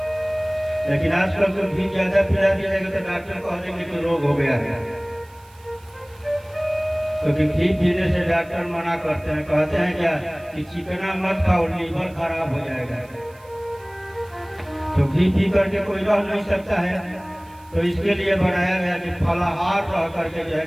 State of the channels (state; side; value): noise; right; hiss, 28 dB below the sound